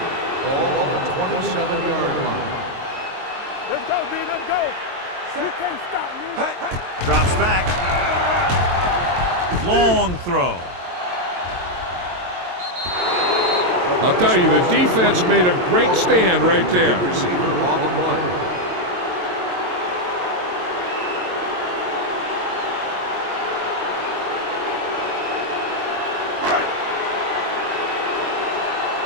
Ball on the 27-yard line. Let's go, D. Let's go. You can't stop me. Drops back. Long throw. I'll tell you, the defense made a great stand right there. Receiver on the play.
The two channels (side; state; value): left; late; 22 ms